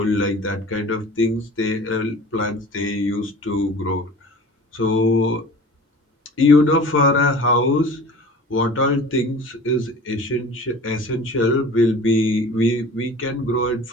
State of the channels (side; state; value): both; normal; correlation 0.41